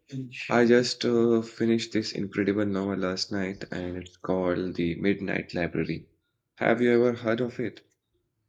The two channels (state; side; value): identical; both; correlation 1.00